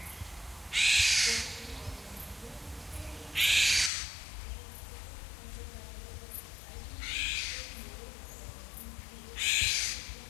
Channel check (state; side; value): drops out; right; at 3.9 s